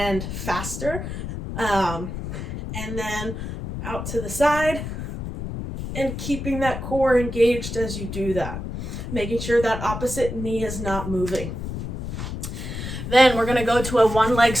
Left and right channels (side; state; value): left; noise; rumble, 6 dB below the sound